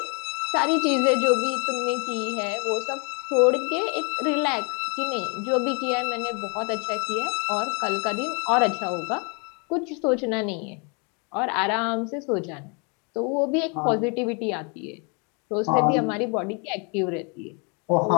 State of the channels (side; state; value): right; quieter; 34.2 dB